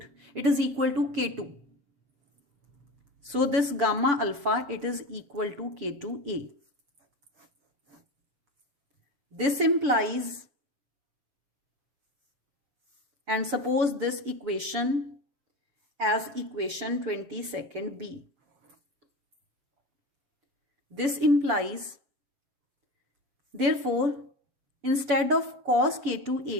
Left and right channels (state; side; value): late; left; 7.0 ms